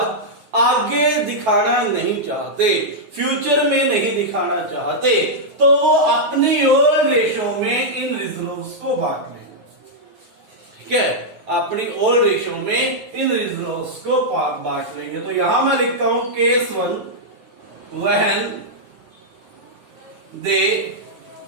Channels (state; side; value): late; left; 9.5 ms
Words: आगे दिखाना नहीं चाहते, फ्यूचर में नहीं दिखाना चाहते, तो वो अपनी ओल्ड रेशो में इन रिजर्व्स को बांट लेंगे। ठीक है, अपनी ओल्ड रेशो में इन रिजर्व्स को बांट लेंगे। तो यहां मैं लिखता हूं case 1, when they